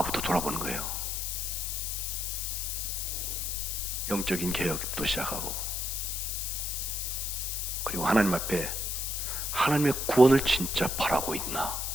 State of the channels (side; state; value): left; noise; hiss, 2 dB below the sound